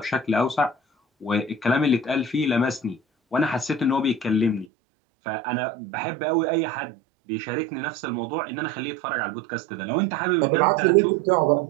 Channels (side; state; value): left; drops out; at 4.7 s